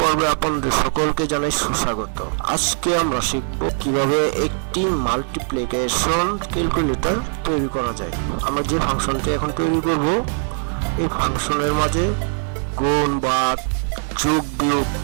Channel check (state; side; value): silent; left; 58 dB below the other